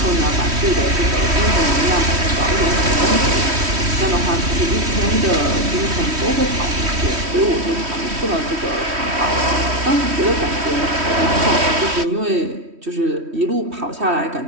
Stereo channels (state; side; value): late; left; 3.1 ms